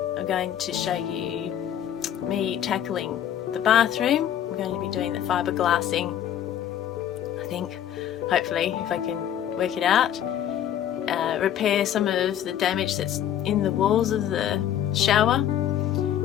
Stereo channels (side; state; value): right; quieter; 10.5 dB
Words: I'm going to show you me tackling the bathroom. I'm going to be doing the fiberglassing, I think, hopefully, if I can work it out. Repair some of the damage that's in the walls of the shower